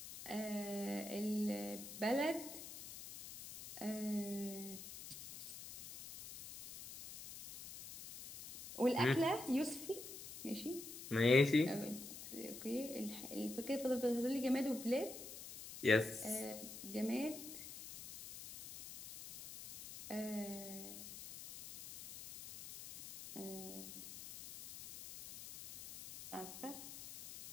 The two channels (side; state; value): left; noise; hiss, 12 dB below the sound